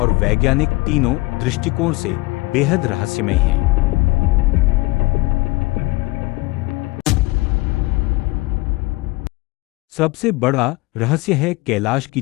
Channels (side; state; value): right; quieter; 23.4 dB